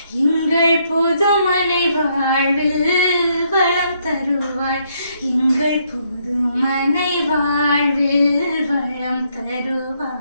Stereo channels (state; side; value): inverted; both; correlation -0.73